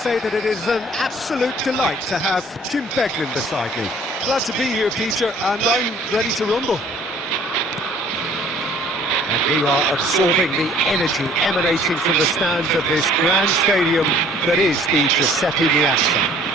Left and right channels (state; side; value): normal; both; correlation 0.55